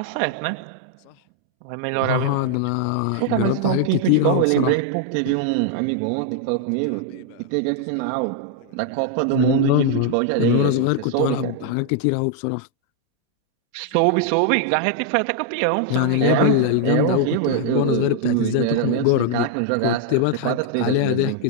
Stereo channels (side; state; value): both; different; correlation 0.00